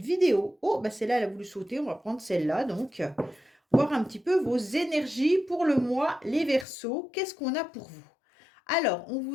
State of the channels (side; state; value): right; drops out; at 6.7 s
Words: vidéo. Oh, bah celle-là, elle a voulu sauter. On va prendre celle-là. Donc, voir un petit peu vos énergies pour le mois, les Verseaux. Qu'est-ce qu'on a pour vous? Alors, on